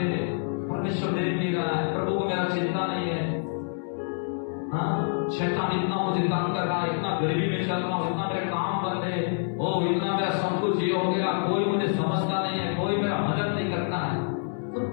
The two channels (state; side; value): silent; right; 60 dB below the other